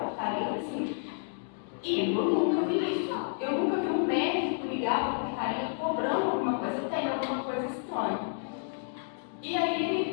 assim, e eu nunca vi isso. Eu nunca vi um médico ligar para a portaria cobrando alguma coisa, tem alguma coisa estranha. E aí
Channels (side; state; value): right; silent; digital silence